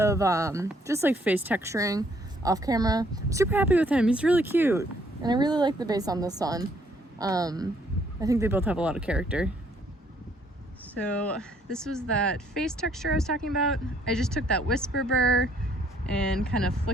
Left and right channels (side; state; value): both; normal; correlation 0.66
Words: just like face texturing off camera. I'm super happy with him. He's really cute. And I really like the base on this one. I think they both have a lot of character. So this was that face texture I was talking about. I just took that Whisper burr and kind of